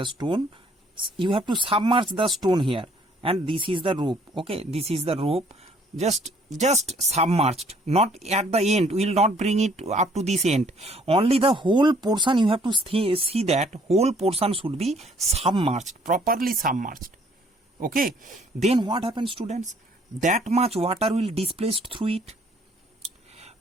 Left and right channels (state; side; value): normal; both; correlation 0.61